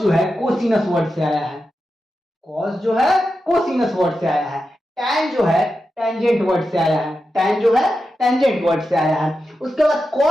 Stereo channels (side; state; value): both; normal; correlation 0.90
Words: जो है कोसिनस वर्ड से आया है, कॉस जो है कोसिनस वर्ड से आया है। टैन जो है टेंजेंट वर्ड से आया है, टैन जो है टेंजेंट वर्ड से आया है। उसके बाद